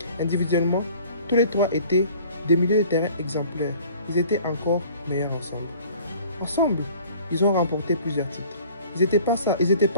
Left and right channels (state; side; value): inverted; both; correlation -0.50